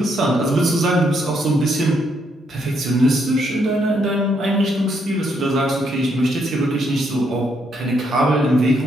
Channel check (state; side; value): normal; both; correlation 0.75